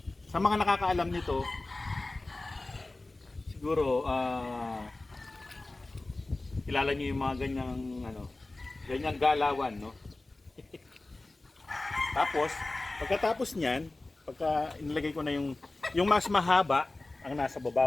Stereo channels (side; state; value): right; quieter; 3.0 dB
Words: sa mga nakakaalam nito, siguro kilala niyo yung mga ganyang galawan, no? Tapos, pagkatapos niyan, pagka inilagay ko na yung mas mahaba ang nasa